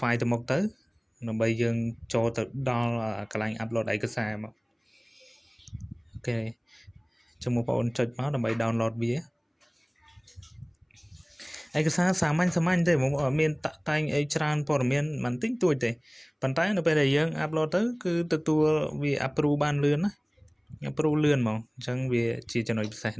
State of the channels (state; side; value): identical; both; correlation 1.00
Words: ទៅមុខទៅដើម្បីយើងចូលទៅដល់កន្លែង upload ឯកសារមកអូខេចាំបងប្អូនចុចមកដើម្បី download វាឯកសារសាមញ្ញទេបងប្អូនមានតាក់តែងអីច្រើនព័ត៌មានមិនតិចតួចទេប៉ុន្តែនៅពេលដែលយើង upload ទៅគឺទទួលវា approve បានលឿនណា ប្រូលឿនហ្មងអញ្ចឹងវាជាចំណុចពិសេស